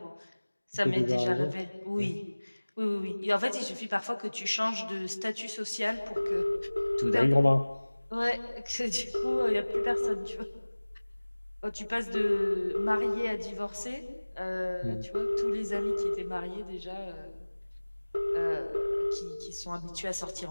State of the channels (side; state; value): both; inverted; correlation -1.00